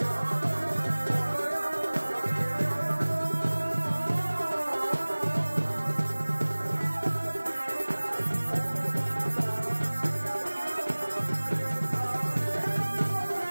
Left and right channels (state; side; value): inverted; both; correlation -1.00